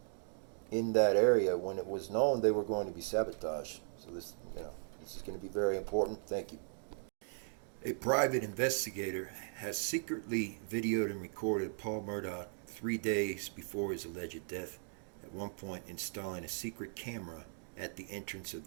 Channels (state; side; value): silent; left; digital silence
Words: in that area when it was known they were going to be sabotaged. So this is going to be very important. Thank you. A private investigator has secretly videoed and recorded Paul Murdaugh 3 days before his alleged death, at one point installing a secret camera at the entrance of